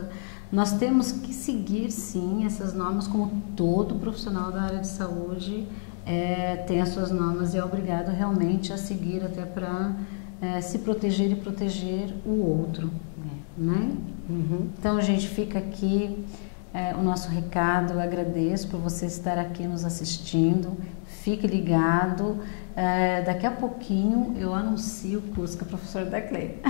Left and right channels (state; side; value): silent; right; digital silence